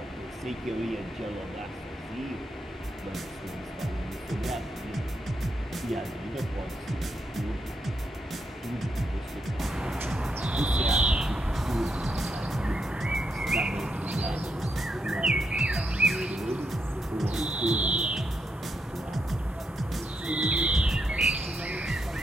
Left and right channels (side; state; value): both; normal; correlation 0.80